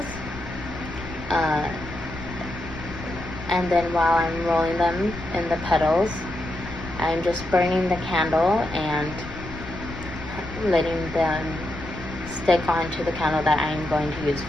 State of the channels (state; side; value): noise; left; rumble, 12 dB below the sound